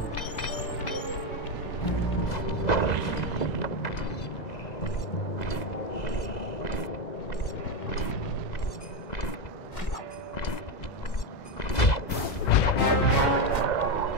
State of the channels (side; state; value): right; late; 2.0 ms